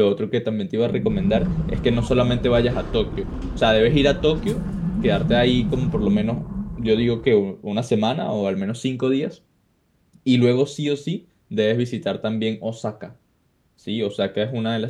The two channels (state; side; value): identical; both; correlation 1.00